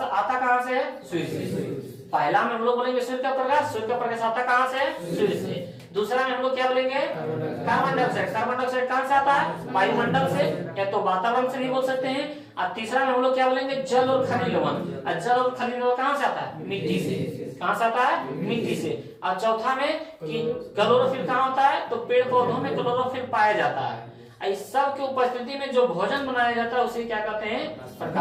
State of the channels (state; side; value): identical; both; correlation 1.00